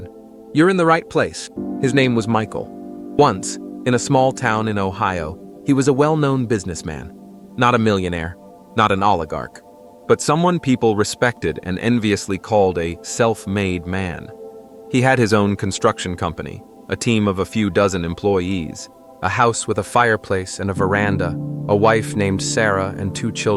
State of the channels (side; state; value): both; identical; correlation 1.00